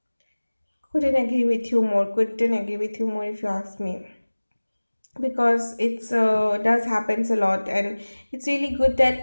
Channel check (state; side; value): inverted; both; correlation -1.00